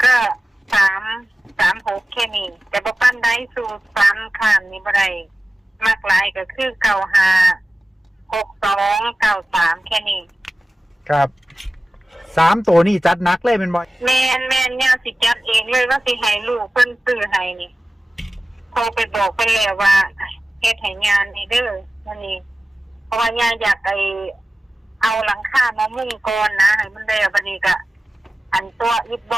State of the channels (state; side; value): normal; both; correlation 0.96